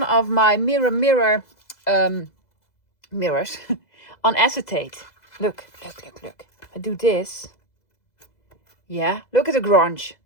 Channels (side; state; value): right; late; 2.0 ms